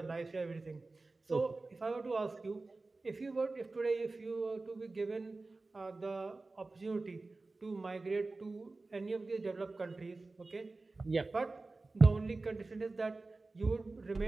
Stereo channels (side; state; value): left; quieter; 3.4 dB